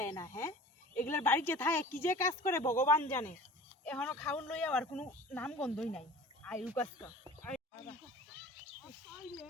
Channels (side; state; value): both; normal; correlation 0.42